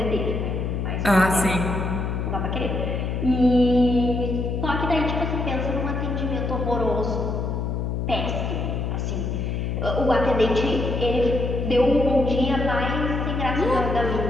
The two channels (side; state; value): left; noise; hum, 1 dB below the sound